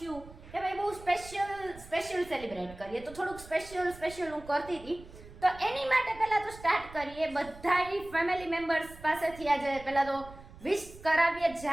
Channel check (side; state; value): right; noise; rumble, 18 dB below the sound